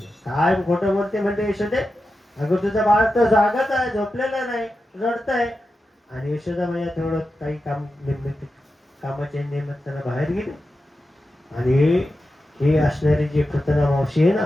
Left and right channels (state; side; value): normal; both; correlation 0.91